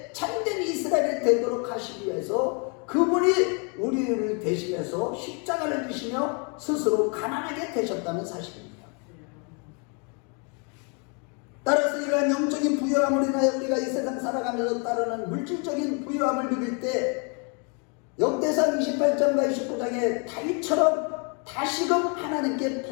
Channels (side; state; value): right; quieter; 36.0 dB